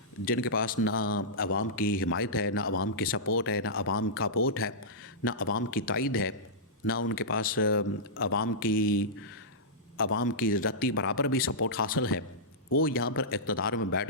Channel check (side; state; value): both; normal; correlation -0.14